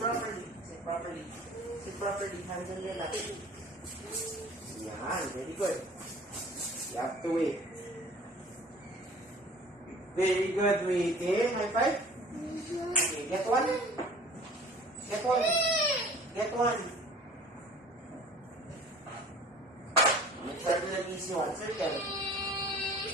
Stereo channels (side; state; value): both; normal; correlation 0.47